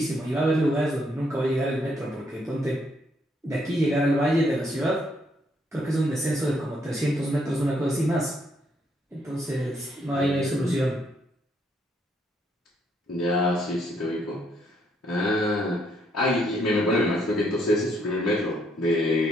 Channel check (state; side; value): normal; both; correlation 0.72